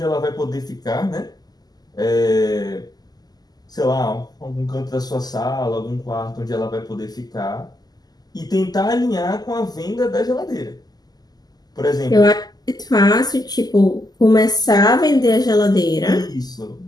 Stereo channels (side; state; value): right; late; 0.19 ms